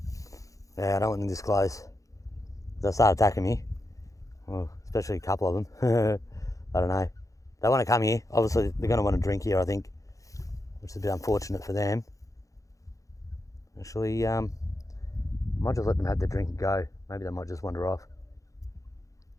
Yeah, I don't want them this close. They'll start attacking me. Well, especially a couple of them. I don't know. They want to come here. Obviously, they're going to want to drink here, I think, which is a bit unfortunate for them. Actually, I might just let them have their drink and go. Maybe they might just wander off.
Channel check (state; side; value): late; right; 0.16 ms